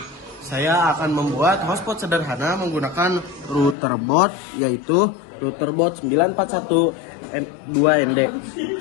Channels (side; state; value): right; drops out; at 3.8 s